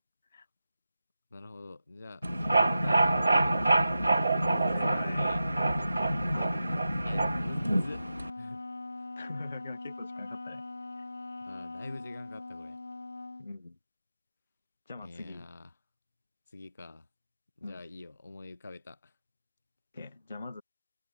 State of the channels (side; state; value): both; inverted; correlation -0.91